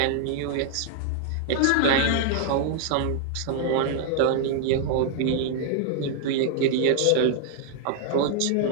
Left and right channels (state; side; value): different; both; correlation 0.00